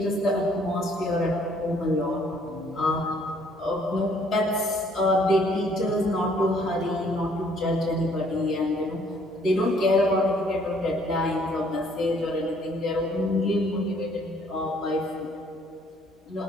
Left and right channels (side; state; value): both; normal; correlation 0.62